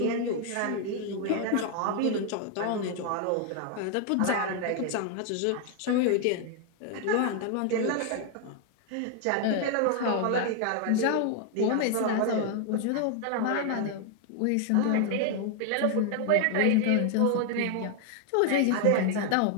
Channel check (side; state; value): both; different; correlation 0.00